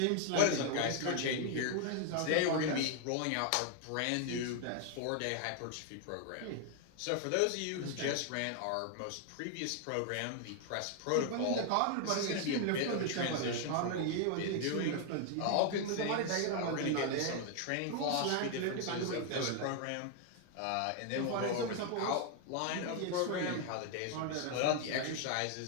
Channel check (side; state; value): both; different; correlation 0.00